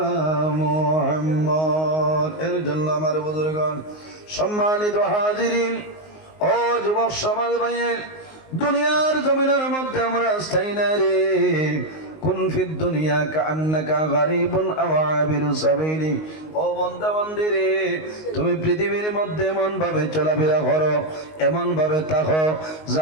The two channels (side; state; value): right; late; 19 ms